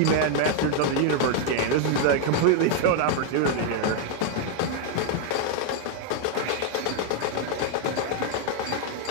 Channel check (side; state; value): both; different; correlation 0.00